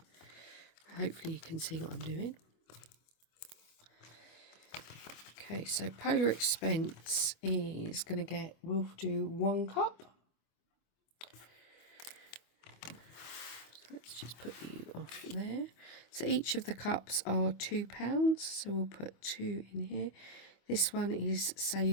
Hopefully you can see what I'm doing. Okay, so Polar Expense is going to get, we'll do 1 cup. Let's just put you off there. So each of the cups are £2, so we'll put 2 in here. This one is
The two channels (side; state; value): right; late; 25 ms